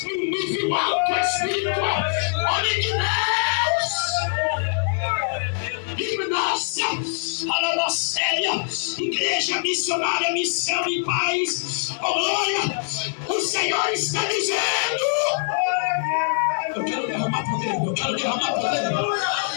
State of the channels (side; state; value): right; silent; digital silence